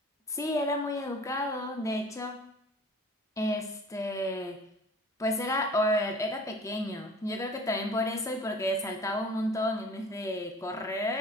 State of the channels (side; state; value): both; normal; correlation 0.45